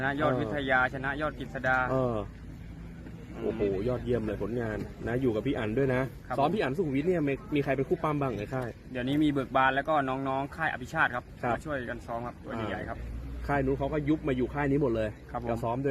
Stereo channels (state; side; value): identical; both; correlation 1.00